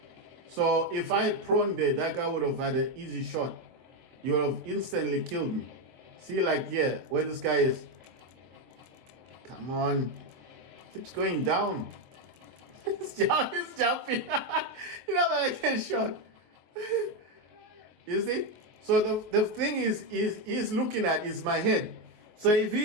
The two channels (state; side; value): late; left; 24 ms